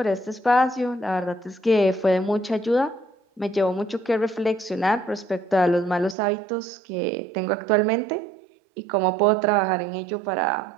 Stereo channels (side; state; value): left; drops out; at 6.2 s